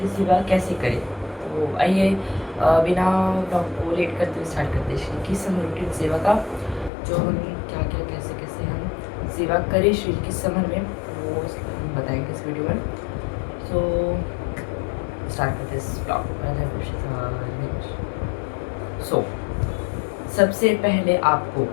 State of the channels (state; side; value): drops out; right; at 6.9 s